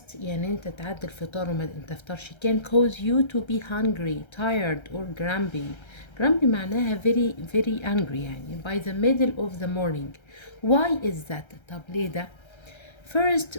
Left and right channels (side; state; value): right; late; 1.3 ms